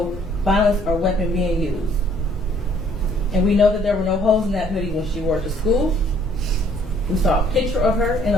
violence, or weapon being used. And we know that there were no holes in that hoodie when she wore it to school. We saw a picture of her in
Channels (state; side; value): normal; both; correlation 0.61